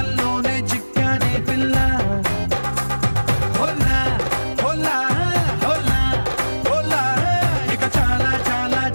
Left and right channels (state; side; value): inverted; both; correlation -1.00